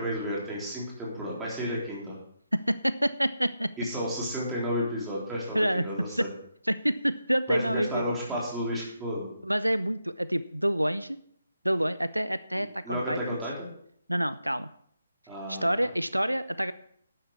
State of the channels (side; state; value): both; inverted; correlation -0.86